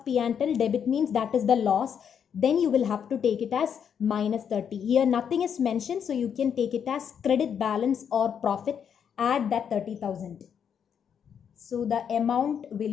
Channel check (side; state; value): right; quieter; 7.8 dB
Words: P&L, debit means that is the loss. Then you will have to take it as minus 30. Here nothing is mentioned, so you can take it as credit balance or profit. Add that 30,000. So the amount